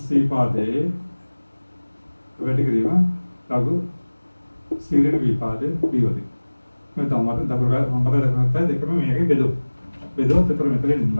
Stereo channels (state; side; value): inverted; both; correlation -1.00